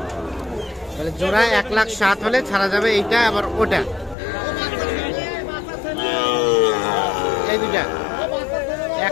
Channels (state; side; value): drops out; right; at 4.2 s